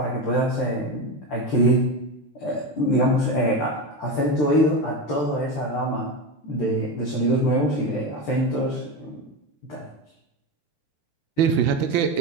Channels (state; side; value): late; right; 13 ms